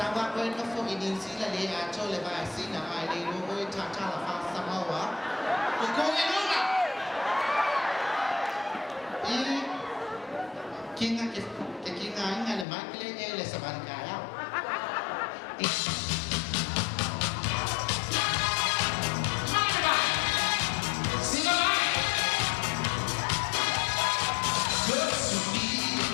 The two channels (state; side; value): drops out; right; at 12.7 s